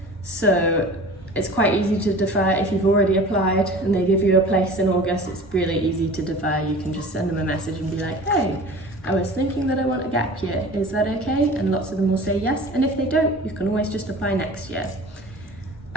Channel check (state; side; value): normal; both; correlation 0.40